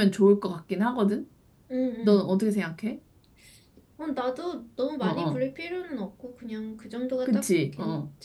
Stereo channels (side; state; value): both; identical; correlation 1.00